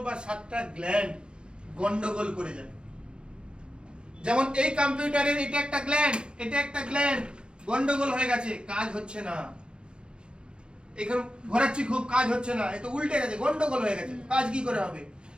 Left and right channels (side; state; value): left; late; 0.052 ms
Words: বা 7টা গ্ল্যান্ড গন্ডগোল করে যায়। যেমন এই কম্পিউটারের এটা একটা গ্ল্যান্ড, এটা একটা গ্ল্যান্ড, গন্ডগোল হয়ে গেছে, কাজ হচ্ছে না। এখানে ঘোরাচ্ছি খুব, কাজ হচ্ছে না, এ তো উল্টে গেছে, গন্ডগোল হয়ে গেছে, কাজ কি করে হবে?